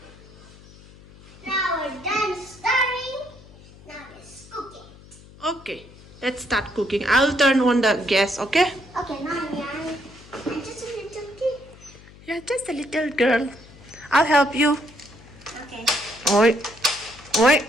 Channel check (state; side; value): noise; left; hum, 22 dB below the sound